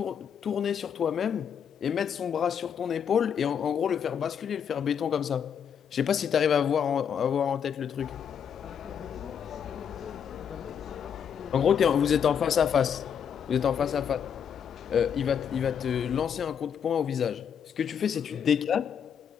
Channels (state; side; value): quieter; right; 7.9 dB